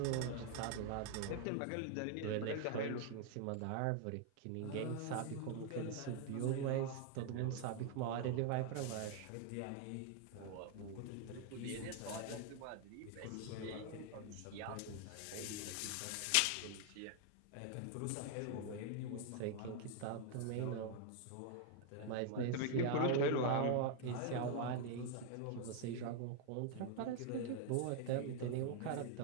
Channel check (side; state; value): both; different; correlation 0.00